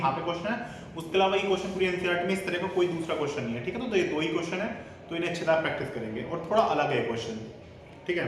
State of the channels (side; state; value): both; identical; correlation 1.00